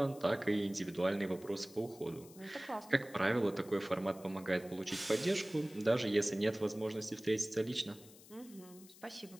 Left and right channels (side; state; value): left; noise; hiss, 21 dB below the sound